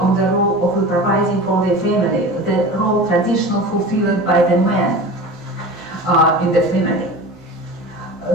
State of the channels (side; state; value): both; normal; correlation 0.34